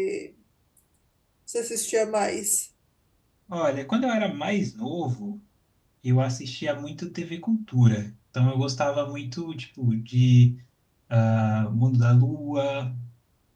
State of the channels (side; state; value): both; identical; correlation 1.00